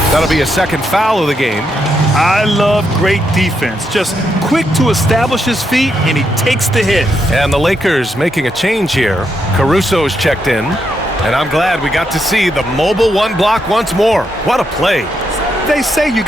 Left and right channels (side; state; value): both; normal; correlation 0.80